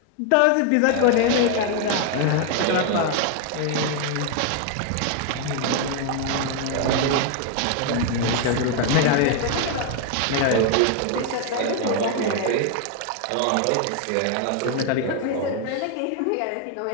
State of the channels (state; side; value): different; both; correlation 0.00